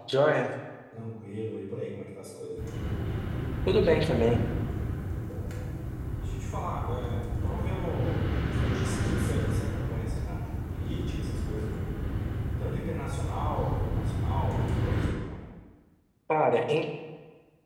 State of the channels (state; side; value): identical; both; correlation 1.00